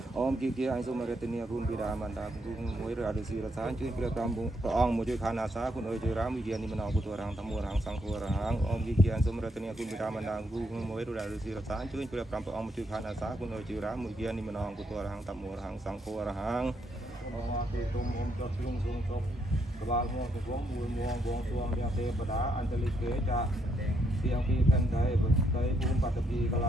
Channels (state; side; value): normal; both; correlation 0.76